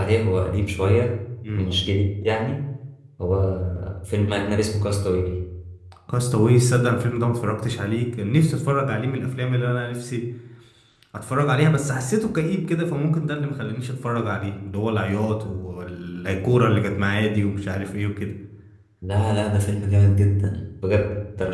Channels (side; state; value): both; identical; correlation 1.00